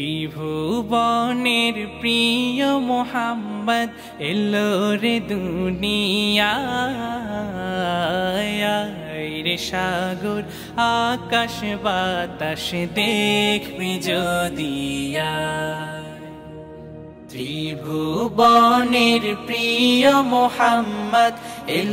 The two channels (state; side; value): identical; both; correlation 1.00